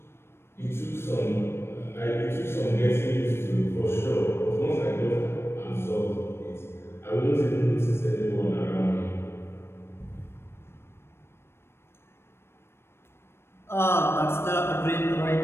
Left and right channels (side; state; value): right; late; 0.12 ms